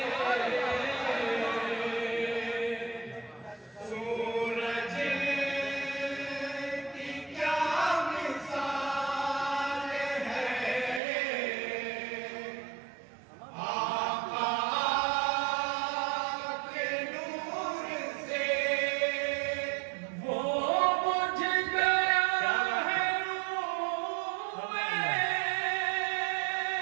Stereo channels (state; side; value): drops out; left; at 11.0 s